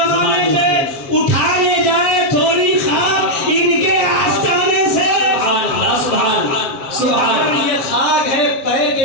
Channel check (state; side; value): late; right; 7.3 ms